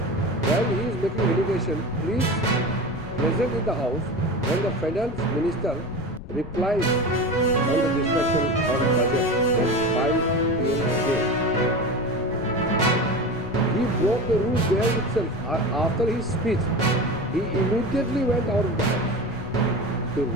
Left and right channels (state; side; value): noise; left; rumble, 13 dB below the sound